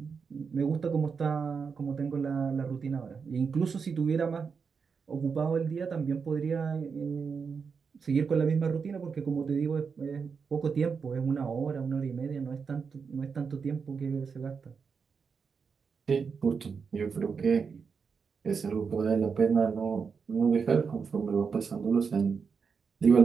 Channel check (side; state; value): left; quieter; 5.7 dB